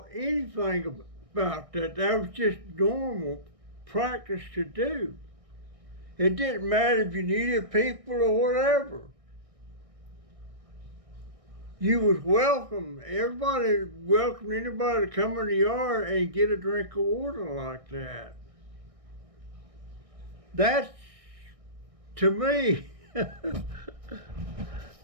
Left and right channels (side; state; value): left; late; 1.6 ms